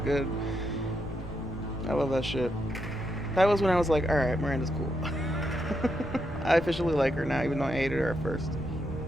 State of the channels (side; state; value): left; noise; rumble, 14 dB below the sound